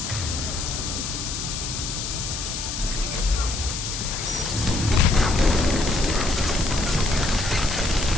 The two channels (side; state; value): left; noise; hiss, 5 dB below the sound